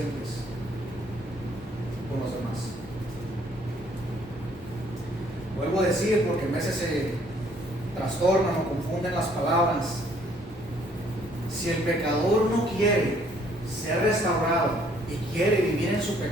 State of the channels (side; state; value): both; normal; correlation 0.63